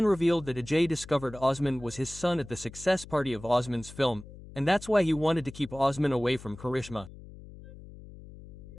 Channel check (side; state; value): left; noise; hum, 17 dB below the sound